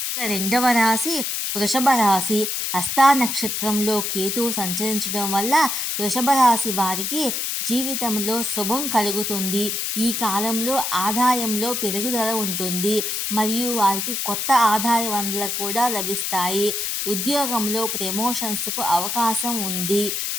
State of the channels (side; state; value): left; noise; hiss, 1 dB below the sound